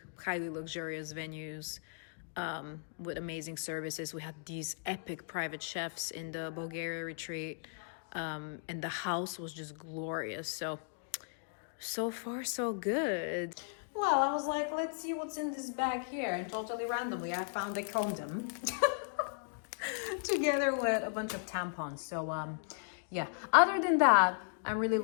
highly luxurious venues with amazing services. We had these epic private chefs in the Bulgaria retreat, and the house was just glorious. So far so good. Well, I was like, let's see what's in this bag here, and totally randomly I found a condom together with a bunch of tampons. So yeah, other than that, I'm really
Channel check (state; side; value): silent; right; digital silence